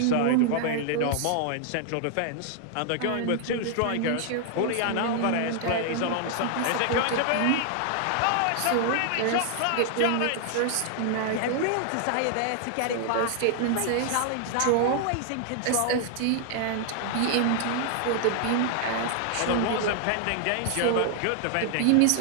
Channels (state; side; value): different; both; correlation 0.00